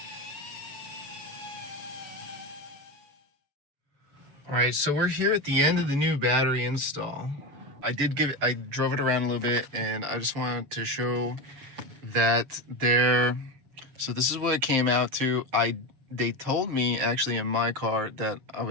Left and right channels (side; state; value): left; late; 7.1 ms